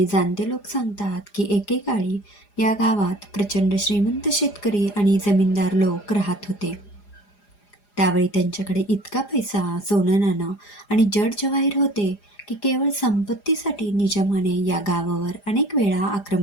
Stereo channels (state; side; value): late; right; 4.9 ms